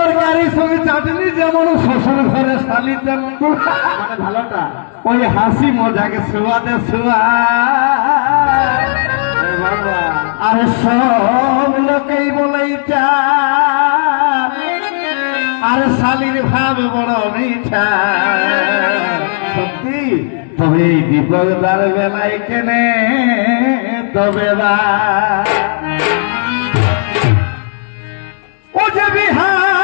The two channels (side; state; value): right; silent; digital silence